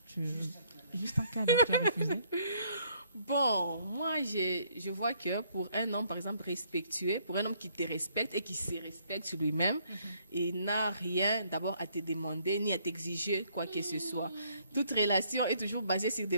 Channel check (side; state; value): both; inverted; correlation -0.66